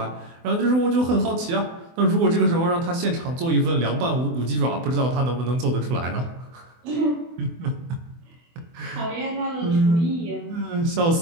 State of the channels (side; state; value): left; late; 24 ms